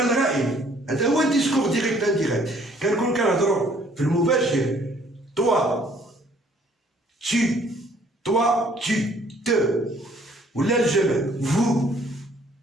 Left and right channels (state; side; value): normal; both; correlation 0.61